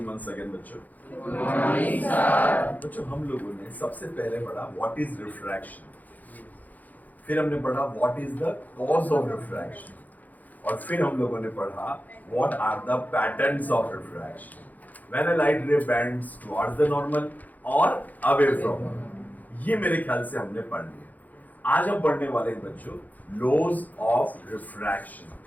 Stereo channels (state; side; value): late; right; 0.081 ms